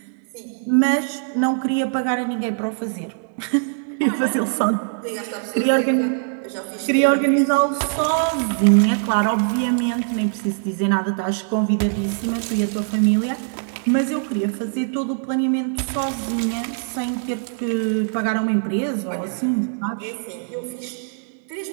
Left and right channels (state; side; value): silent; left; 64 dB below the other